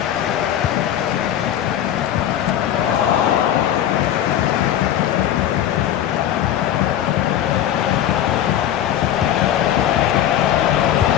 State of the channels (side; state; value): right; quieter; 11.1 dB